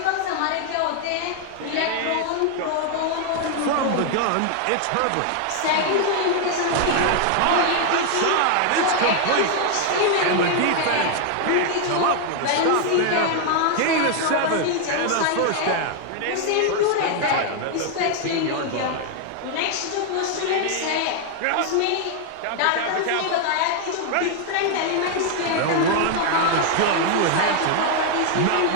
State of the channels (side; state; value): both; different; correlation 0.00